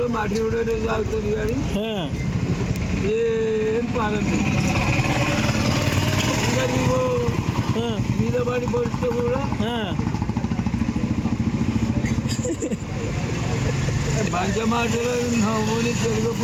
మట్టి కూడా తాగుతుంది కానీ ఏం పాలదు. ఇంకా నీవు మీద పడి పడితే కూడా మంచి మాటలు నవ్వుని తెలుగు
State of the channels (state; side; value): identical; both; correlation 1.00